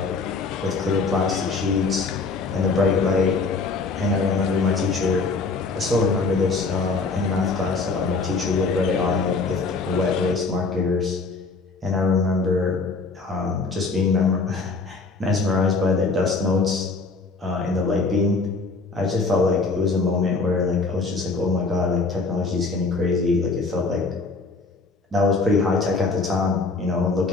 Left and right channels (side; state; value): right; quieter; 4.1 dB